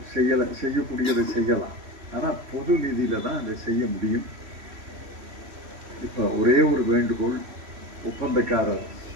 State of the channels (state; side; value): late; left; 3.1 ms